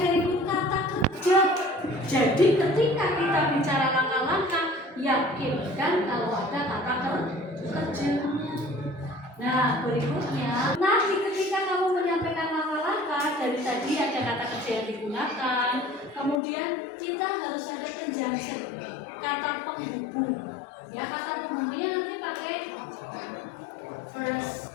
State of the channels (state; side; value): drops out; right; at 16.4 s